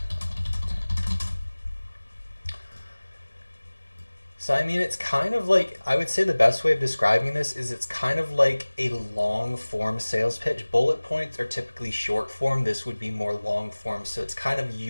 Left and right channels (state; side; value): inverted; both; correlation -1.00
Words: So I mean, it's kind of like, I would say the best way of describing this is it's kind of like a long form sales pitch. Bullet points are typically short form. This would be more long form. So it's kind of